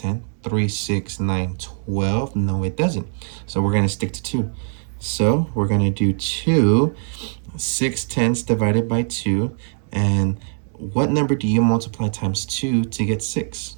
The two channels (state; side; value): silent; left; 64 dB below the other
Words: 3, 6, 9, 12. No, it doesn't. So we're going to stick to 2. So we're going to do 2. 6/10 divided by 2. And what number do you multiply times 2 to get 6?